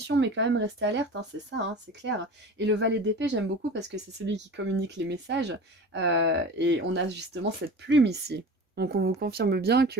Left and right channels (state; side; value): normal; both; correlation 0.36